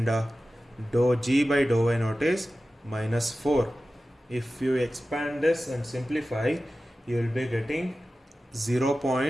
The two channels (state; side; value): normal; both; correlation 0.95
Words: dou g by dou y naught is minus 4. If you expand this and simplify, you will be getting